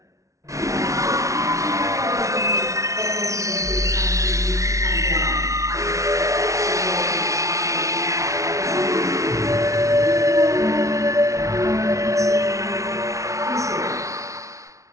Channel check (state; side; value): late; left; 0.15 ms